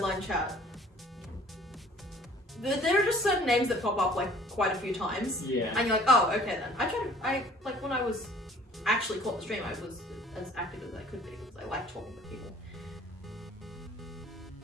chat. There are just certain names that pop up like quite a few times. Yeah. And you're like, oh, okay then. I like when I was actually caught the stream, I was as active as I could be because I like talking to people.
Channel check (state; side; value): normal; both; correlation 0.53